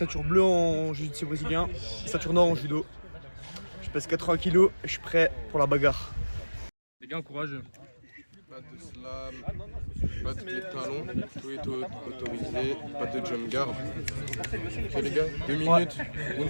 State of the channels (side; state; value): both; inverted; correlation -1.00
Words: bleue en jiu-jitsu brésilien et ceinture noire en judo. Je pèse 80 kg et je suis prêt pour la bagarre. Les gars, courageux. Pas de slam, pas de pied de talon, tout est autorisé, pas de jump guard. Ok les gars, 2 minutes,